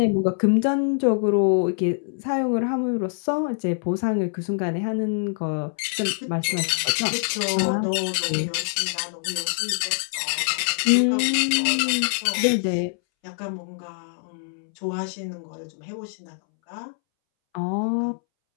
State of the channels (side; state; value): right; silent; 62 dB below the other